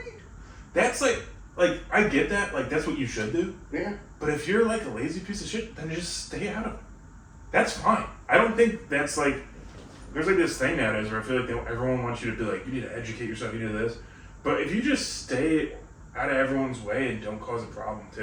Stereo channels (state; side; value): identical; both; correlation 1.00